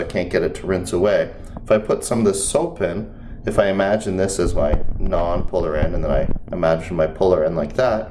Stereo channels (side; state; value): both; identical; correlation 1.00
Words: can't get it to rinse away. If I put some of this soap in, if I imagine this as my non-polar end, and then I imagine my polar end like